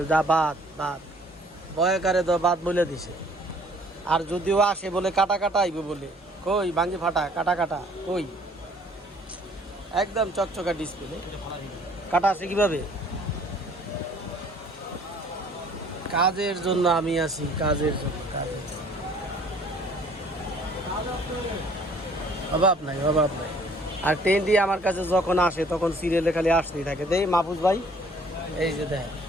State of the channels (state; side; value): normal; both; correlation 0.57